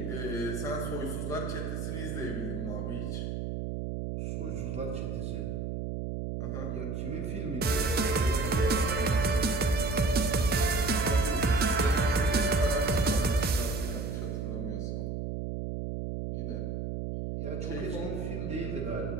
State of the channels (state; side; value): noise; right; hum, 3 dB below the sound